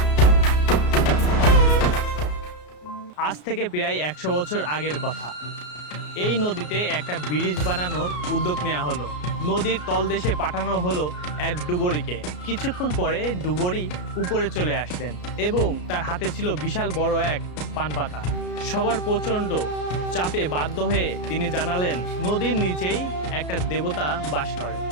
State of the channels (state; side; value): late; right; 33 ms